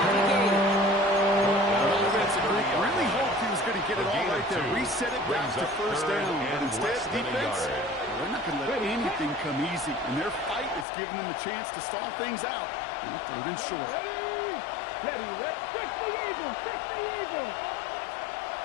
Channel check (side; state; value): right; drops out; at 10.9 s